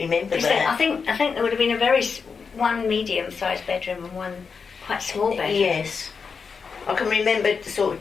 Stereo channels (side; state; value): right; quieter; 5.5 dB